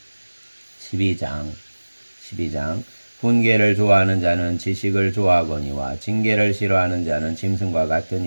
12장 훈계를 좋아하는 자는 지식을 좋아하거니와 징계를 싫어하는 자는 짐승과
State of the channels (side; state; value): both; inverted; correlation -1.00